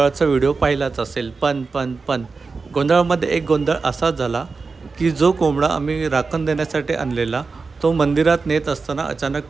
व्हिडिओ पाहिलाच असेल. पण गोंधळामध्ये एक गोंधळ असा झाला की जो कोंबडा आम्ही राखण देण्यासाठी आणलेला तो मंदिरात नेत असताना अचानक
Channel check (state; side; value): quieter; left; 4.4 dB